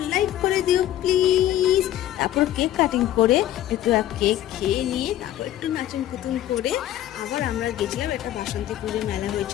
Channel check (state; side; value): quieter; right; 12.9 dB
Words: লাইক করে দিও প্লিজ। তারপর কেক কাটিং করে একটু কেক খেয়ে নিয়ে তারপর একটু নাচন কুতুন করে আবার আমরা গেছিলাম একটা বাসন্তী পুজো মেলা